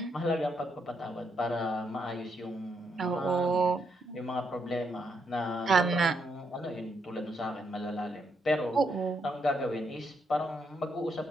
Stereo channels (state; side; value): normal; both; correlation 0.78